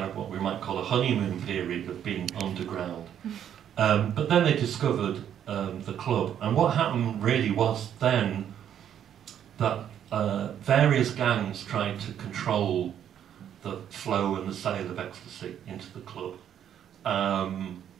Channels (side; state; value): left; quieter; 9.7 dB